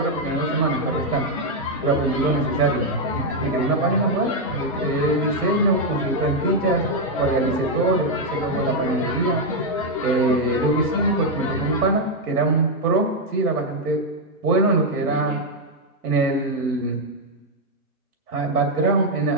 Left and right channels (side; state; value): both; normal; correlation 0.00